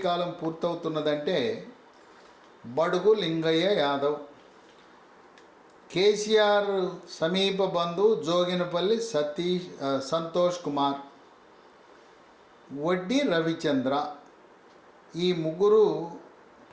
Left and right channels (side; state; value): both; identical; correlation 1.00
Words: కాలం పూర్తవుతున్నదంటే బడుగు లింగయ్య యాదవ్, కేసీఆర్ సమీప బంధువు జోగినపల్లి సంతోష్ కుమార్, వడ్డీ రవిచంద్ర. ఈ 3